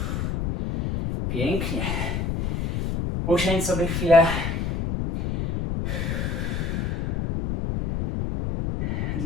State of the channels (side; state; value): left; noise; rumble, 1 dB below the sound